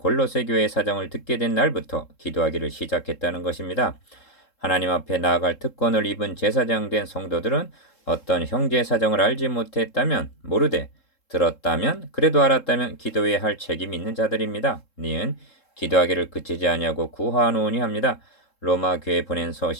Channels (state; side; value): late; right; 3.7 ms